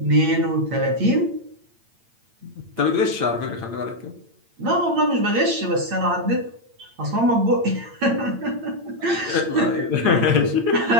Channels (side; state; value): left; late; 8.8 ms